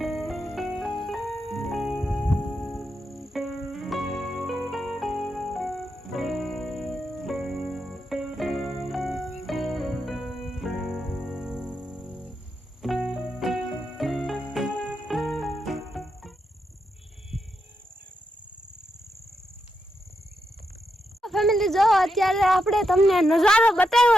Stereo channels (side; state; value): both; normal; correlation 0.84